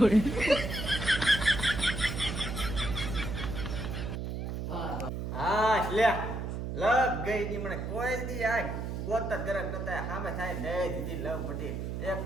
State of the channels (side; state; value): right; noise; hum, 4 dB below the sound